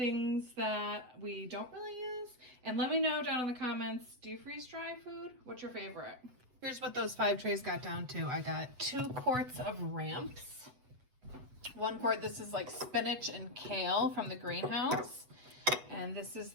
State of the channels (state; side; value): late; left; 8.0 ms